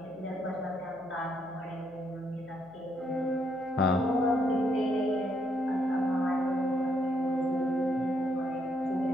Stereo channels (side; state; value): left; noise; hum, 27 dB below the sound